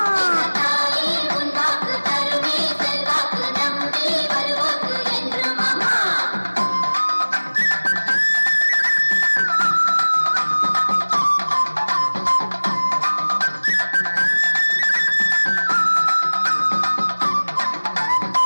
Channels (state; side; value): inverted; both; correlation -1.00